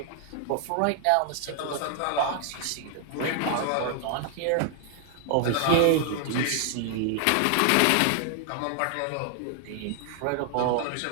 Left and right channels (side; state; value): both; different; correlation 0.00